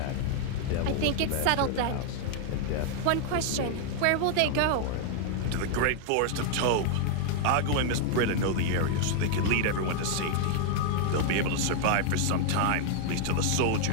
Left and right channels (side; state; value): both; different; correlation 0.00